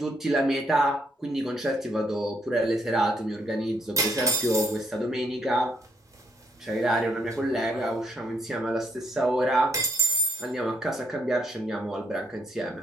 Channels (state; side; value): normal; both; correlation 0.73